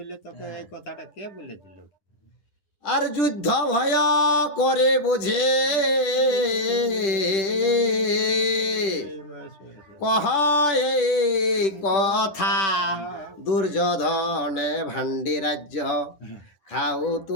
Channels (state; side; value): late; right; 10 ms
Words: তোকে এই কথাটা কে বলে দিল? আর যুদ্ধ ভয় করে বুঝে কহ এই কথা, দুর্যোধনে ভান্ডি রাজ্য খাও